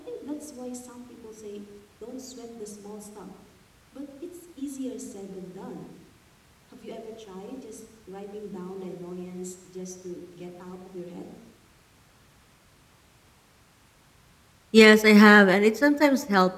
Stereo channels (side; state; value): both; identical; correlation 1.00